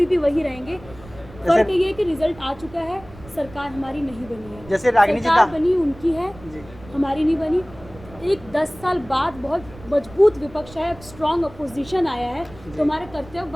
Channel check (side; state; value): right; noise; rumble, 19 dB below the sound